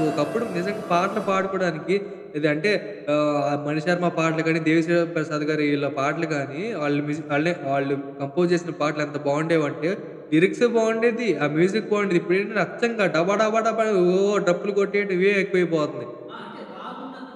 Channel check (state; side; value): identical; both; correlation 1.00